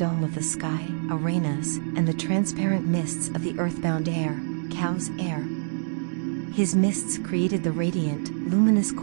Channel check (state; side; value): silent; left; 61 dB below the other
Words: of the sky, URANUS, and the transparent mists of the earthbound air, Cow's air. His mists created the radiant, luminous